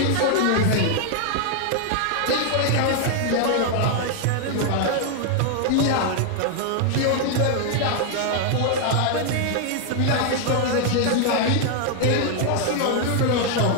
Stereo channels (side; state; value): both; different; correlation 0.00